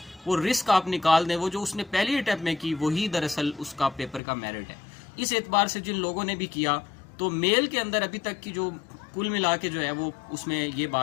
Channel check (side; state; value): right; drops out; at 4.2 s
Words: वो रिस्क आप निकाल दें, वो जो उसने पहली अटैम्प्ट में की वही दरअसल उसका पेपर का मेरिट है। इस एतबार से जिन लोगों ने भी किया, तो मेल के अंदर अभी तक की जो कुल मिला के जो है वो उसमें ये